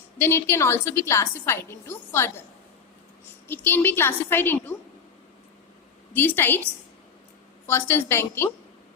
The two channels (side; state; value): right; quieter; 6.4 dB